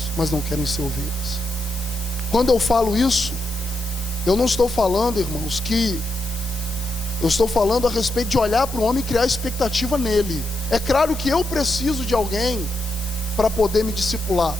mas não querem ser ovelhas. Quando eu falo isso, eu não estou falando, irmãos, que eu estou falando a respeito de olhar para o homem e criar expectativa nele. É claro que eu preciso de alguém para poder me discipular.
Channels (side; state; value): left; noise; hiss, 13 dB below the sound